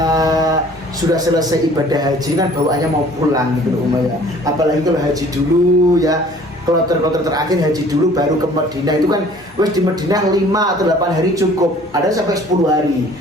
sudah selesai ibadah haji kan bawaannya mau pulang gitu Umayyah. Apalagi kalau haji dulu ya, kloter terakhir haji dulu baru ke Madinah itu kan wes di Madinah 5 atau 8 hari cukup. Ada sampai 10 hari,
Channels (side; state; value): both; normal; correlation 0.52